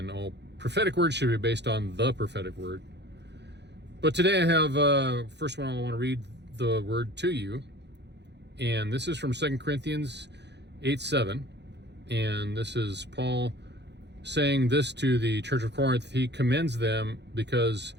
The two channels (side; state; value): left; late; 0.50 ms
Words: all prophetic words should be based on the prophetic word. But today I have, first one I want to read the word to you. And this is from 2 Corinthians 8:7. And this is Paul saying this to the church of Corinth. He commends them because